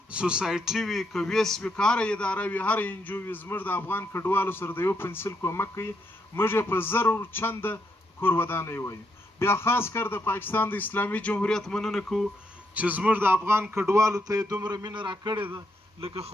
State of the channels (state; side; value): normal; both; correlation 0.77